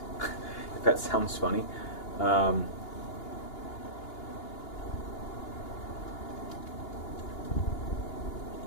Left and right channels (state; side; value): late; right; 2.8 ms